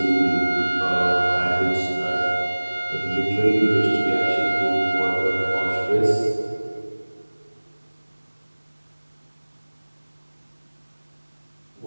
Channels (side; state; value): both; inverted; correlation -1.00